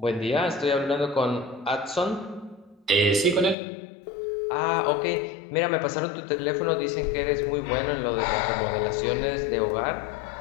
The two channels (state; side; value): drops out; right; at 3.6 s